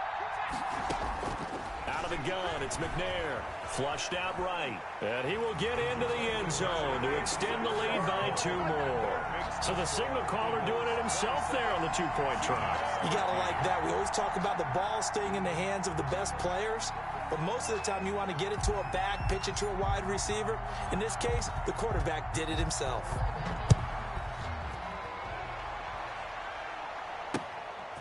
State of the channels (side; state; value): both; identical; correlation 1.00